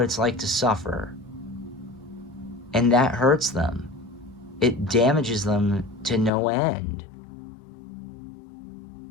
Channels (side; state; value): right; drops out; at 6.3 s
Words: it's like to suffer. And that hurts them. It damages them to no end.